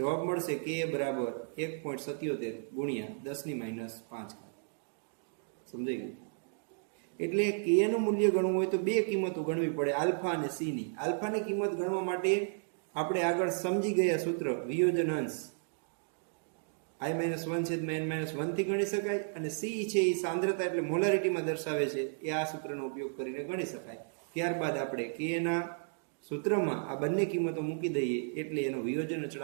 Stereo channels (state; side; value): silent; left; digital silence